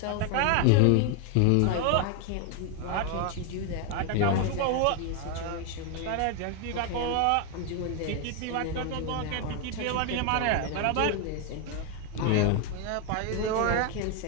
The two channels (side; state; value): both; different; correlation 0.01